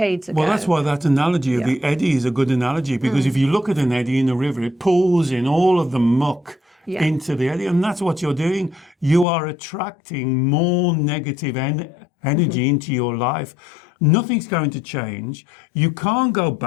ago. Well, that's why that analogy of the eddy is a good analogy, because if you look at an eddy in a river, it pulls in all of the muck into the eddy, and that's what you're doing. You are attracting more negative energy into your life. Nothing's going to change. You can't go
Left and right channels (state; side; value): drops out; right; at 9.2 s